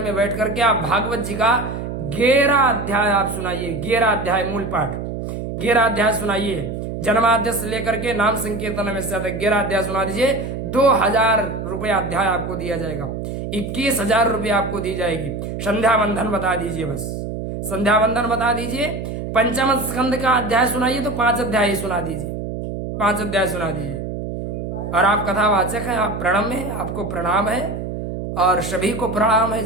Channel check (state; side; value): noise; right; hum, 6 dB below the sound